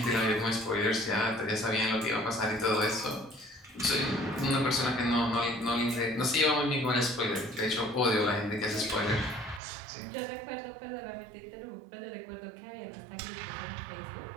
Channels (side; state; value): left; drops out; at 9.6 s